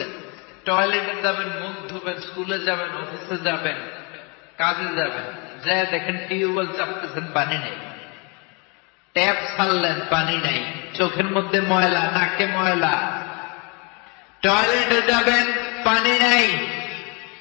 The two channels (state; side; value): quieter; right; 32.2 dB